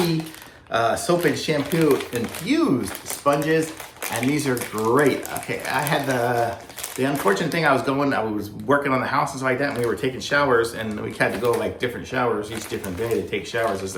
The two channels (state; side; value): identical; both; correlation 1.00